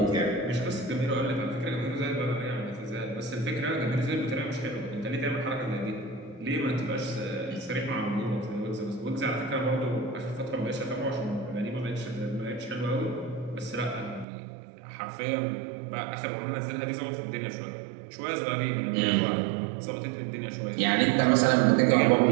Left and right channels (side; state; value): left; drops out; at 14.2 s